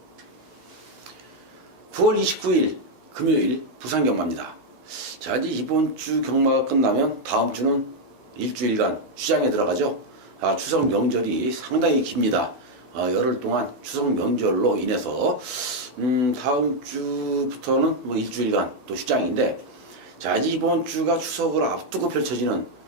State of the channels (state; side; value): late; left; 12 ms